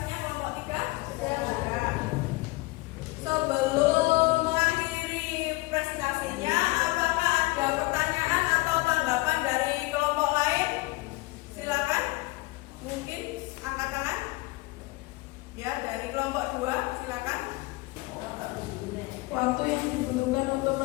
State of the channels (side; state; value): right; quieter; 22.1 dB